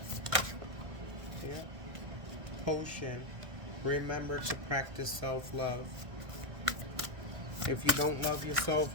what? Yeah. Potion. Remember to practice self-love. If you don't love yourself,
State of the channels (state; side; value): late; left; 1.6 ms